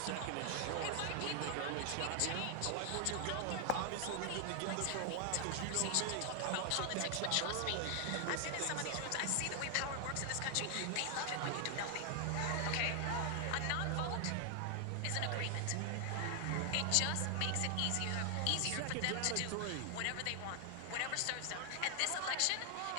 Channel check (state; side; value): different; both; correlation 0.00